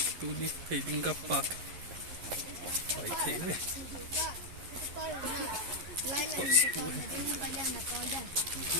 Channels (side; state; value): left; late; 11 ms